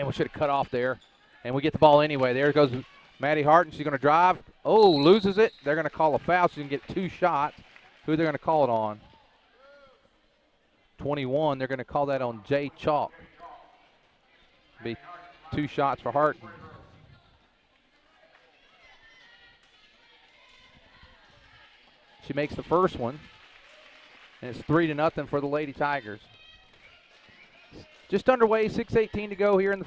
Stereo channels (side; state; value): both; identical; correlation 1.00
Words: we should have cut off there. And we get the ball anyway. There goes Maddie Harton. She's going to drive. Oh, loses it. They're going to call a foul. She can get 2 shots. Who are they going to call it on? 21. They're going to call that on Jay Chalk. Be 2 shots for Harton. She makes the first one. And it's 3-0 for the Lady Tigers. Just underway, 6:18 to go here in the